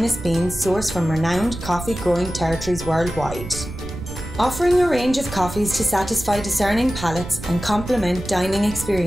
beans sourced from renowned coffee growing territories worldwide. Offering a range of coffees to satisfy discerning palates and complement dining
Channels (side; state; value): right; noise; rumble, 10 dB below the sound